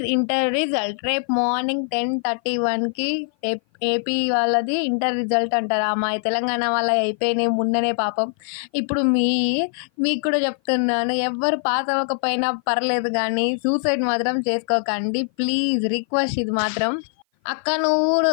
inter result రేపు morning 10:31కి AP వాళ్ళది inter result అంటారా మా తెలంగాణ వాళ్ళ అయిపోయినాయి మొన్ననే పాపం. ఇప్పుడు మీకు కూడా చెప్తున్నాను, ఎవ్వరు పాస్ అవ్వకపోయినా పర్లేదు కానీ సూసైడ్ మాత్రం చేసుకోకండి ప్లీజ్, రిక్వెస్ట్ ఇది మాత్రం. అక్క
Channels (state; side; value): silent; right; 56 dB below the other